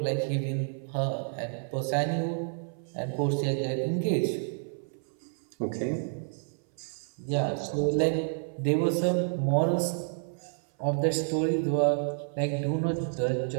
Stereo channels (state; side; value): silent; left; 58 dB below the other